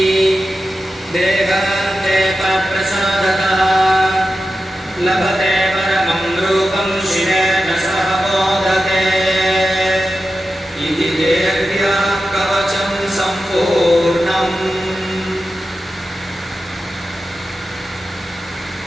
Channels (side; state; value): both; normal; correlation 0.92